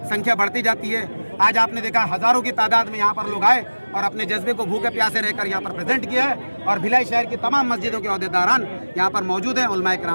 संख्या बढ़ती जाती है। आज आपने देखा हज़ारों की तादाद में यहाँ पर लोग आए और अपने जज्बे को भूखे प्यासे रहकर यहाँ पर प्रेजेंट किया है। और भिलाई शहर की तमाम मस्जिदों के अहदेदारान यहाँ पर मौजूद हैं, उलमाए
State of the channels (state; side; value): inverted; both; correlation -1.00